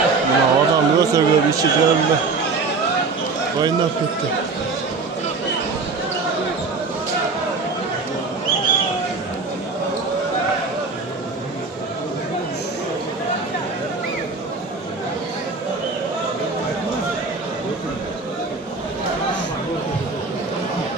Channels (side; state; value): left; quieter; 4.1 dB